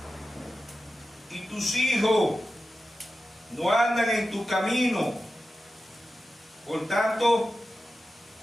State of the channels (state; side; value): normal; both; correlation 0.93